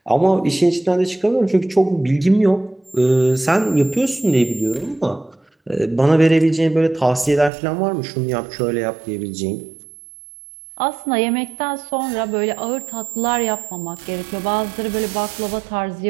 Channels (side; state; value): left; drops out; at 7.5 s